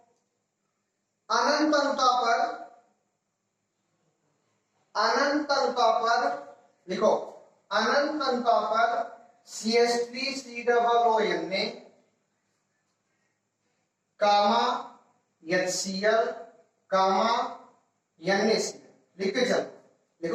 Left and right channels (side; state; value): both; identical; correlation 1.00